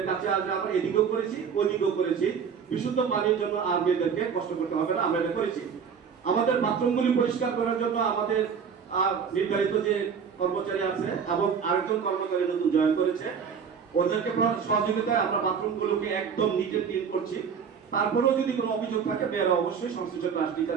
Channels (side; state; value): left; quieter; 6.7 dB